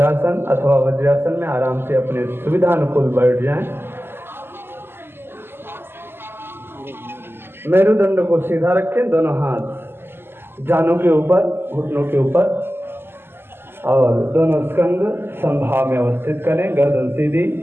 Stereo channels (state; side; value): late; left; 0.11 ms